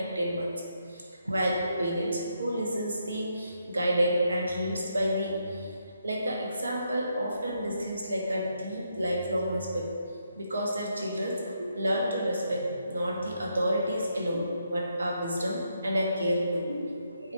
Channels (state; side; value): inverted; both; correlation -0.78